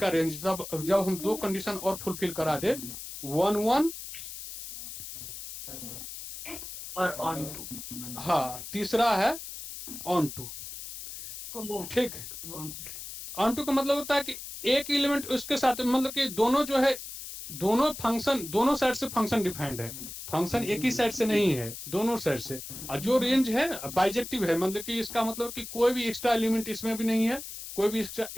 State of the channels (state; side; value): noise; left; hiss, 10 dB below the sound